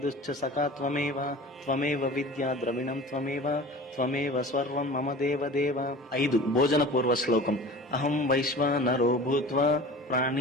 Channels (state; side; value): normal; both; correlation 0.39